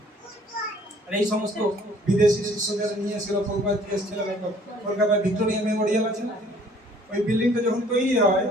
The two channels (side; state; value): both; normal; correlation 0.57